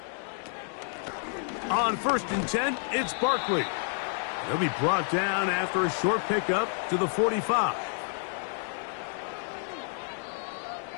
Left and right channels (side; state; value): right; silent; 58 dB below the other